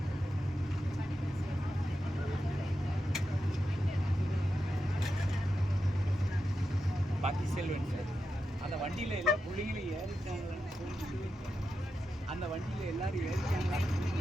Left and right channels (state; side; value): normal; both; correlation 0.88